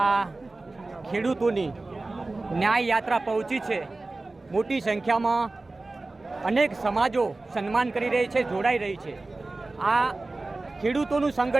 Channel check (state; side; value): quieter; left; 3.2 dB